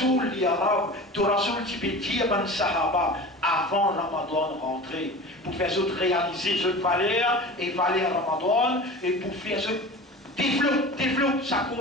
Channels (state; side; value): normal; both; correlation 0.35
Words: l'arabe, Torasoul, tu peux dire, ben Sahaba, avant Ramadan rentrer, pour faire ça réaliser cette valeur, et valeur Ramadan, et pour faire ça développe sa